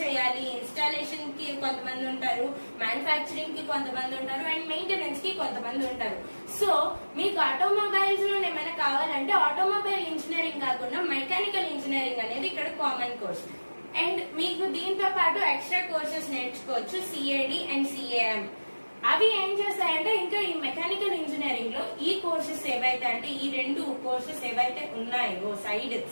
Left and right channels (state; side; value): inverted; both; correlation -1.00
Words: చేయాలి, ఇన్స్టాలేషన్ కి కొంతమంది ఉంటారు, మ్యానుఫ్యాక్చరింగ్ కి కొంతమంది ఉంటారు అండ్ మెయింటెనెన్స్ కి కొంతమంది ఉంటారు. సో మీకు ఆటోమొబైల్స్ లో ఏమైనా కావాలంటే ఆటోమొబైల్ ఇంజనీరింగ్ కాకుండా మెకానికల్ ఇంజనీరింగ్ అనేది ఇక్కడ కామన్ కోర్స్. అండ్ మీకు దీంతో పాటు ఎక్స్ట్రా కోర్సెస్ నేర్చుకోవచ్చు, సిఏడి అండ్ సిఏఎం. అవి ఏం చేస్తాయంటే ఇంకా ఈ మెకానికల్ ఇంజనీరింగ్ లో ఈ కోర్సెస్ ఏవైతే అంటే ఈ 2 కోర్సెస్ ఏవైతే ఉన్నాయో సైడ్